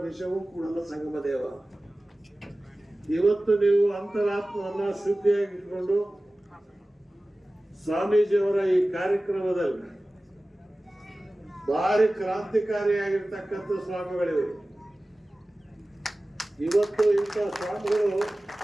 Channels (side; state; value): both; normal; correlation 0.97